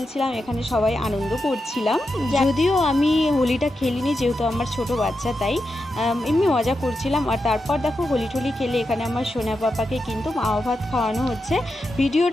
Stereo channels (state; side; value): normal; both; correlation 0.88